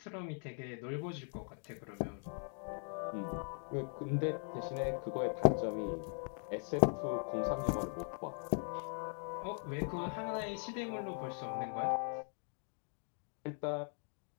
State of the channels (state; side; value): silent; right; 51 dB below the other